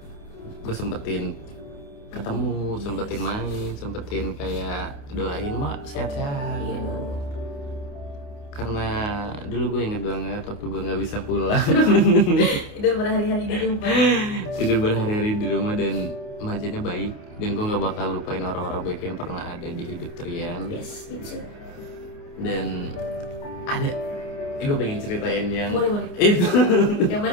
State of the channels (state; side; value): late; right; 29 ms